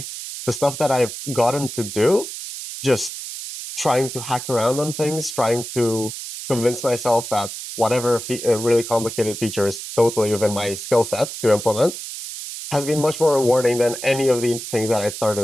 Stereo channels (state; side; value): noise; right; hiss, 9 dB below the sound